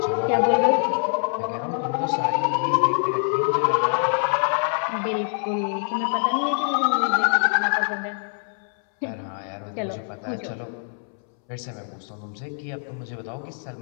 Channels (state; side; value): silent; right; 62 dB below the other